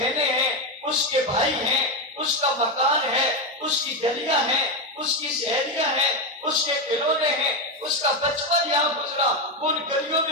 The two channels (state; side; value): normal; both; correlation 0.10